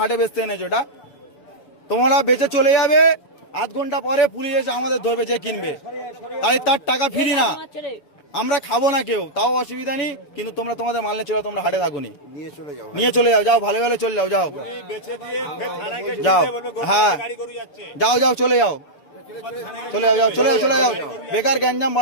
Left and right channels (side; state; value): right; late; 6.9 ms